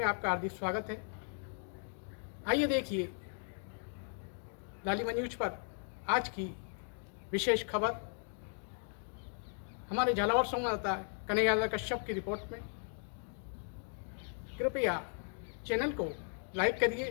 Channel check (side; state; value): right; silent; 53 dB below the other